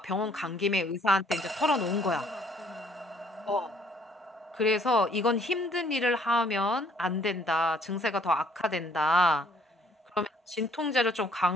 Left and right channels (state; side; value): normal; both; correlation 0.62